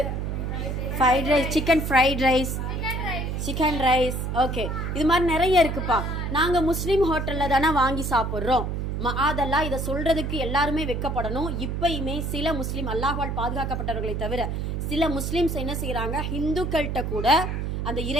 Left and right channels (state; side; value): noise; right; hum, 2 dB below the sound